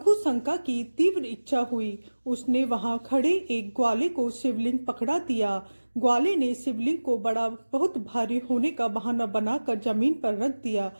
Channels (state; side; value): inverted; both; correlation -1.00